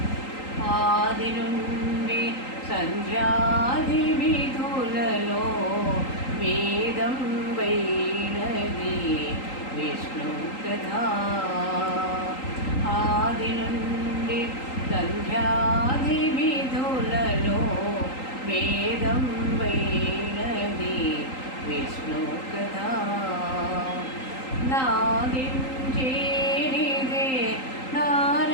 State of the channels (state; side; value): late; right; 3.8 ms